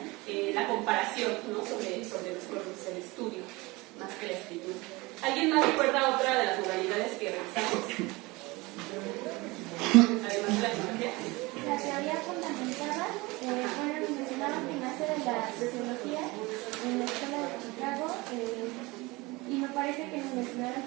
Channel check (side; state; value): left; quieter; 23.2 dB